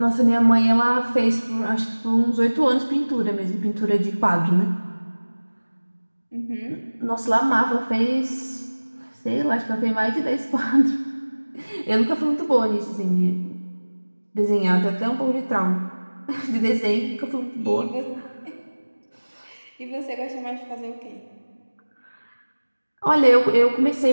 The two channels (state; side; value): inverted; both; correlation -1.00